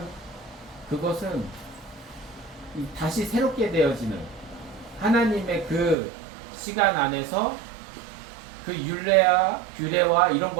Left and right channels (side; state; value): left; drops out; at 6.0 s